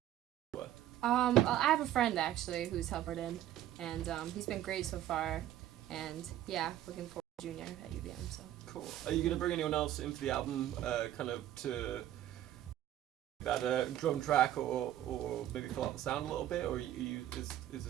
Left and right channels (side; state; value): left; quieter; 12.6 dB